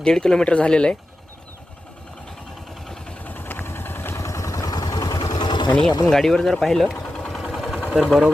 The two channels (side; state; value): both; normal; correlation 0.92